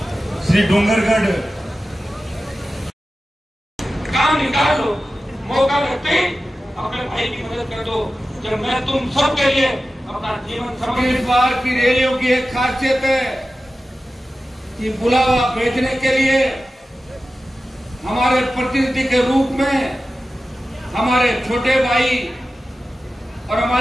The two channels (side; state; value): both; normal; correlation 0.94